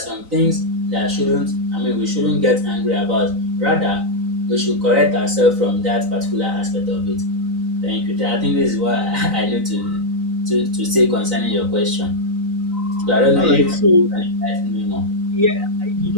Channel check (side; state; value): left; late; 3.9 ms